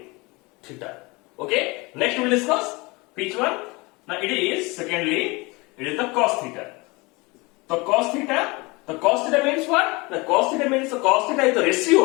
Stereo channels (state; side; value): quieter; right; 25.3 dB